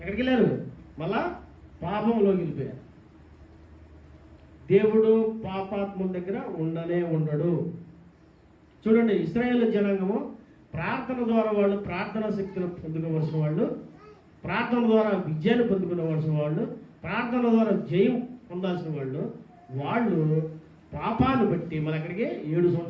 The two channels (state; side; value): identical; both; correlation 1.00